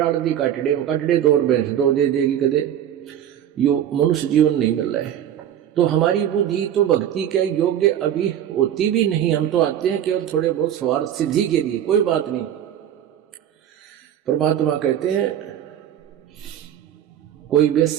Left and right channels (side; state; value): left; quieter; 10.4 dB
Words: दी काटड़े में, काटड़े दो और भैंस दो दे देगी कदे, यो मनुष्य जीवन नहीं मिल रहा है। तो हमारी बुद्धि तो भक्ति के योग्य अभी होती भी नहीं, हम तो आते हैं केवल थोड़े बहुत स्वार्थ सिद्धि के लिए, कोई बात नहीं। परमात्मा कहते हैं, कोई